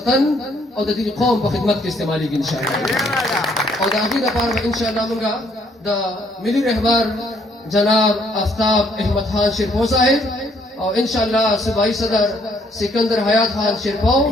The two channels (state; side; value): normal; both; correlation 0.66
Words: او د دې قوم په خدمت کې استعمالېږي انشاءالله او د هغې لپاره به انشاءالله موږ د ملي رهبر جناب آفتاب احمد خان شیرپو صاحب او انشاءالله صوبایي صدر سکندر حیات خان شیرپو